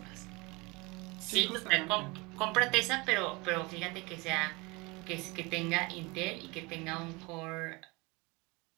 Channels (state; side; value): quieter; left; 25.7 dB